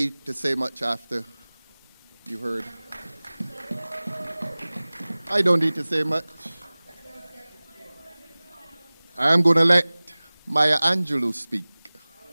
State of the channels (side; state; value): both; inverted; correlation -1.00